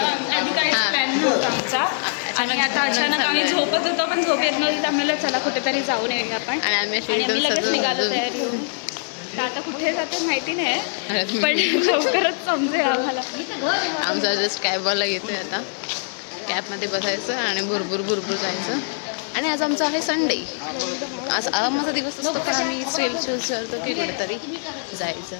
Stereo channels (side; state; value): right; silent; digital silence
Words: आधी काहीच प्लॅन नव्हता आमचा आणि आता अचानक आम्ही झोपत होतो पण झोप येत नव्हती, आम्हाला चला कुठेतरी जाऊन येऊया आपण. आणि आम्ही लगेच निघालो तयारी होऊन. आता कुठे जाते माहिती नाही पण लवकरच समजेल आम्हाला. आमचा जस्ट कॅबवाला येतोय आता. कॅबमध्ये बसायचं आणि भरपूर जायचं. आणि आज आमचा आहे संडे. आज आरामाचा दिवस असतो पण आम्ही चूज करतो की कुठेतरी जायचं.